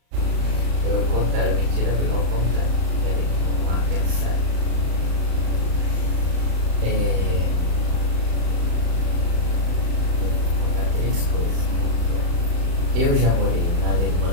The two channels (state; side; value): late; left; 35 ms